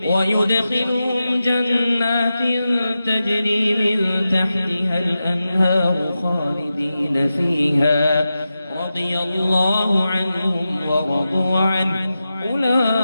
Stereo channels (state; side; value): inverted; both; correlation -0.92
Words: ويدخلهم جنات تجري من تحتها الأنهار خالدين فيها رضي الله عنهم ورضوا عنه